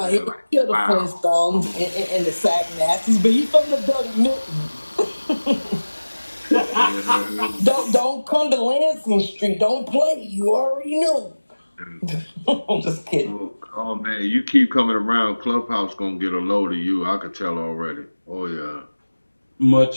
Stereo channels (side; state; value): both; inverted; correlation -1.00